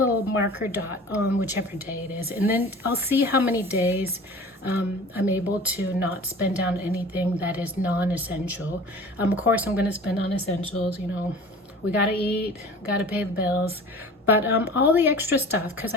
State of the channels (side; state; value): both; normal; correlation 0.42